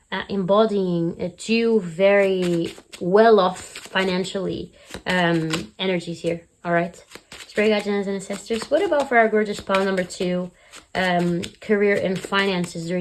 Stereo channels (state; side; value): identical; both; correlation 1.00